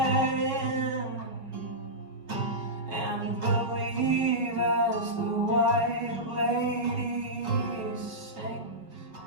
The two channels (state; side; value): late; left; 5.3 ms